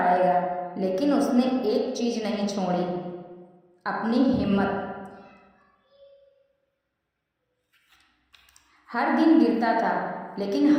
लेकिन उसने एक चीज नहीं छोड़ी, अपनी हिम्मत। हर दिन गिरता था लेकिन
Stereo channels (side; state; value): both; identical; correlation 1.00